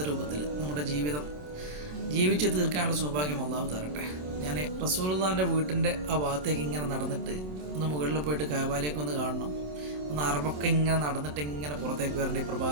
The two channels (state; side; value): late; left; 27 ms